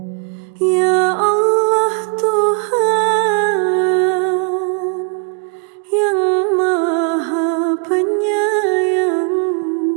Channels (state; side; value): quieter; left; 39.4 dB